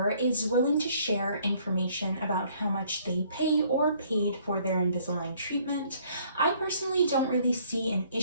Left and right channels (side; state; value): both; inverted; correlation -0.62